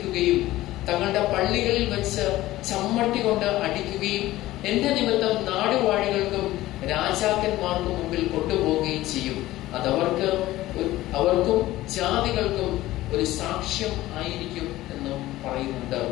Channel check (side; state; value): right; quieter; 16.3 dB